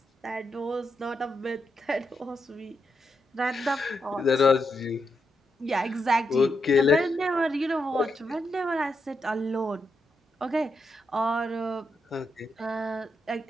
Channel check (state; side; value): normal; both; correlation 0.83